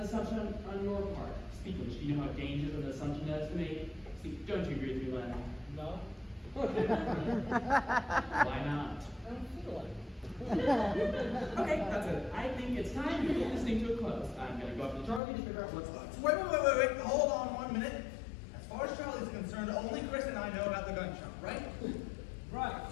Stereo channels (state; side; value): drops out; right; at 15.2 s